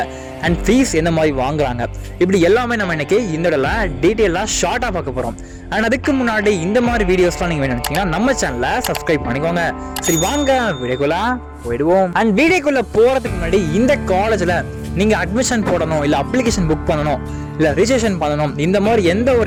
அண்ட் ஃபீஸ் எந்த மாதிரி வாங்குறாங்க, இப்படி எல்லாமே நம்ம இன்னைக்கு இந்த இடத்துல டீட்டெயிலாக ஷார்ட்டா பார்க்க போறோம். அண்ட் அதுக்கு முன்னாடி இந்த மாதிரி வீடியோஸ்லாம் நீங்க வேணும் நினைச்சீங்கன்னா நம்ம சேனலை சப்ஸ்கிரைப் பண்ணிக்கோங்க. சரி, வாங்க வீடியோக்குள்ள போயிடுவோம். அண்ட் வீடியோக்குள்ள போறதுக்கு முன்னாடி இந்த காலேஜ்ல நீங்க அட்மிஷன் போடணும், இல்ல அப்ளிகேஷன் புக் பண்ணணும், இல்ல ரிஜிஸ்ட்ரேஷன் பண்ணணும், இந்த மாதிரி எந்த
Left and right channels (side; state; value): both; identical; correlation 1.00